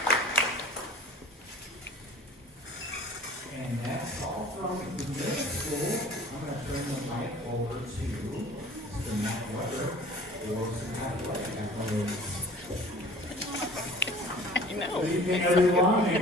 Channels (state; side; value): normal; both; correlation 0.46